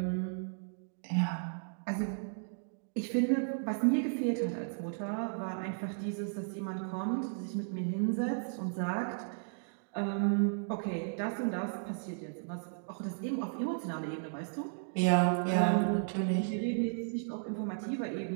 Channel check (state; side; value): silent; left; digital silence